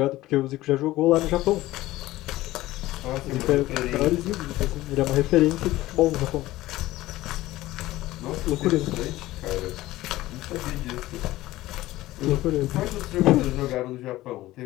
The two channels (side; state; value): right; quieter; 16.8 dB